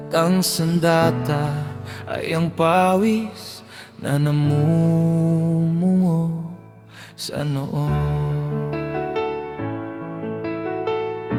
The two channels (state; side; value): identical; both; correlation 1.00